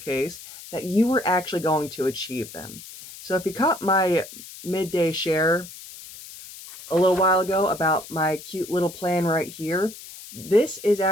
that you were actually going to achieve them. So if you caught my midday share a little while ago about my cute little plan right here, this is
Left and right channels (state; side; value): noise; left; hiss, 15 dB below the sound